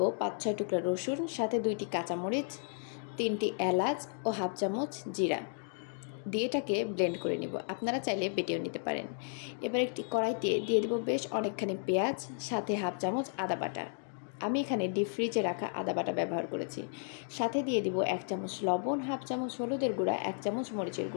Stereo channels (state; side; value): silent; right; 55 dB below the other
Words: ৫-৬ টুকরা রসুন, সাথে ২টি কাঁচামরিচ, ৩টি এলাচ ও হাফ চামচ জিরা দিয়ে এটাকে ব্লেন্ড করে নিব। আপনারা চাইলে বেটেও নিতে পারেন। এবার একটি কড়াইতে দিয়ে দেব বেশ অনেকখানি পেঁয়াজ, সাথে হাফ চামচ আদা বাটা। আমি এখানে ডিপ ফ্রিজে রাখা আদা বাটা ব্যবহার করেছি। সাথে দিয়ে দিব ১ চামচ লবণ, হাফ চামচ হলুদের গুঁড়া, ১ চামচ মরিচের